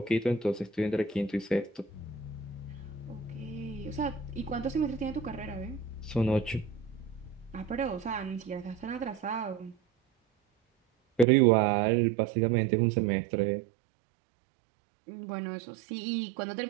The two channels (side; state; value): left; drops out; at 11.2 s